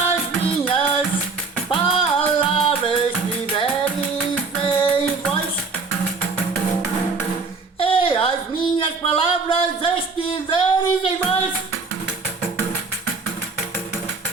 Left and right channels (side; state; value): left; quieter; 4.4 dB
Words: palavras estiveres em vós.